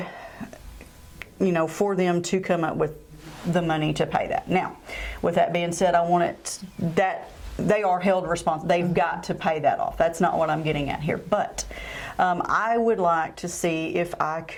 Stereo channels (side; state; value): both; identical; correlation 1.00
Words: for them to come up with the money to pay that. Now, with that being said, I want it that they are held responsible. They've got to pay that off. That's not what I'm getting at here. But I would like to see if I